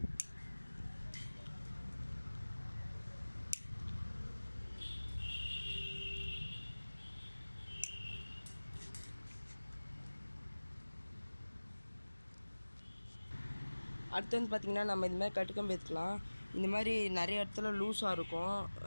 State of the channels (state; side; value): inverted; both; correlation -1.00